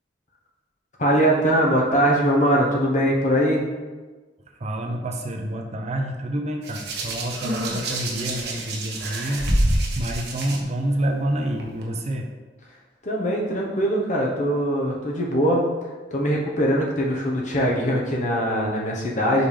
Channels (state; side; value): normal; both; correlation 0.49